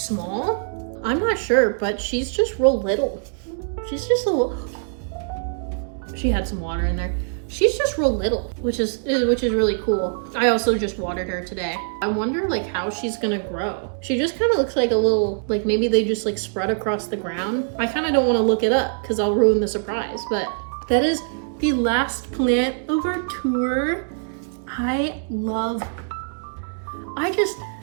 I'm not sure, but she's just real little. She's just a little, she had some water in there. She's just real little, which is really cool. I also just watered her today. I wonder like how she's gonna grow. She just kind of looks like a little, like maybe they just like spread across the ground. I kind of don't want to look it up because I'll ruin the surprise, but that is the last plant of our tour. I love plants.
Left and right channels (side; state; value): left; silent; digital silence